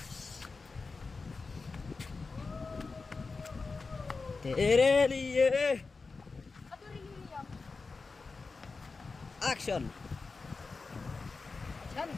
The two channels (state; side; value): quieter; right; 4.2 dB